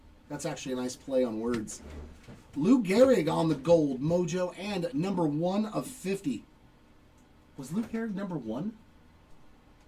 That's actually a nice play on words. Lou Gehrig on the gold mojo and number 1 of 50. Was Lou Gehrig number 1?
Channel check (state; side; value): identical; both; correlation 1.00